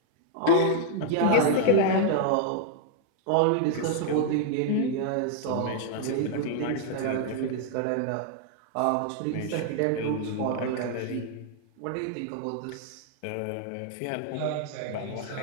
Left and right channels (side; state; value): both; different; correlation -0.01